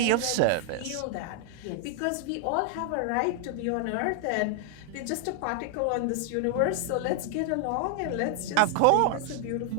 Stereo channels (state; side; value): different; both; correlation 0.00